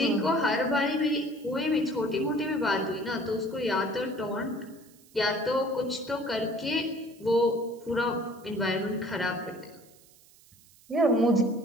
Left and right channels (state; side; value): noise; right; hiss, 27 dB below the sound